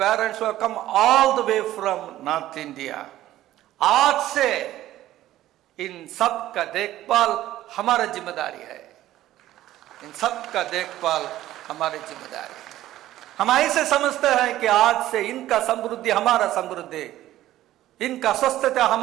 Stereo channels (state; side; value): quieter; left; 14.2 dB